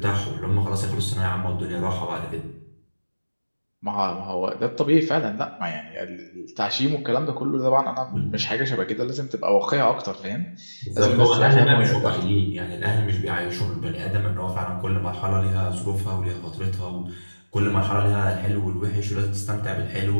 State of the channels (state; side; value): inverted; both; correlation -1.00